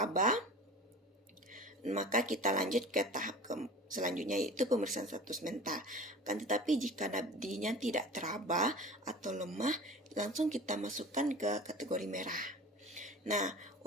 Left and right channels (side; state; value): both; normal; correlation 0.38